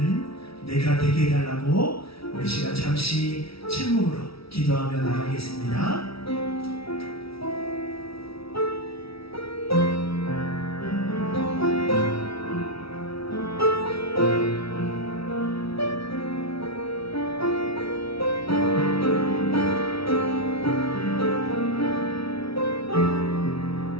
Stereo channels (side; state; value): right; late; 0.76 ms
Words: 내가 되게 해달라고 우리 시간 잠시 침묵으로 기도하며 나가겠습니다.